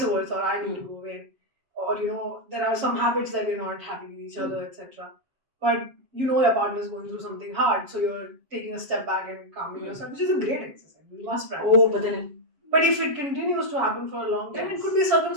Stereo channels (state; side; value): late; left; 7.2 ms